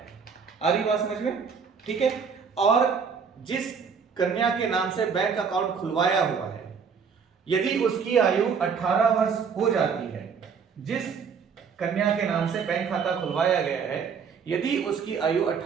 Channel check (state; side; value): quieter; left; 6.2 dB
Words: आ रही बात समझ में? ठीक है, और जिस कन्या के नाम से बैंक अकाउंट खुलवाया हुआ है, यदि उसकी आयु 18 वर्ष हो जाती है, जिस कन्या के नाम से बैंक खाता खुलवाया गया है, यदि उसकी आयु